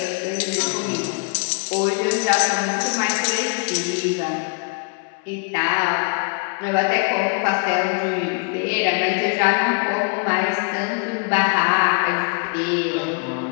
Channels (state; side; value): quieter; right; 36.5 dB